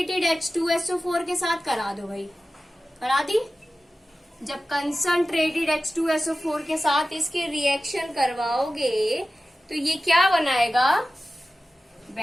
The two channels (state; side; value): normal; both; correlation 0.95